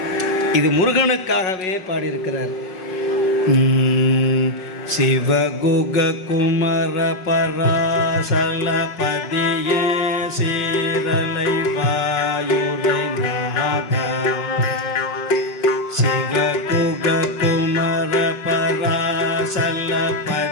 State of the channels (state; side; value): late; right; 5.4 ms